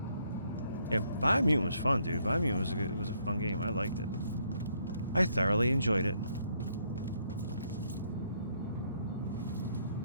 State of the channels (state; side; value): inverted; both; correlation -0.71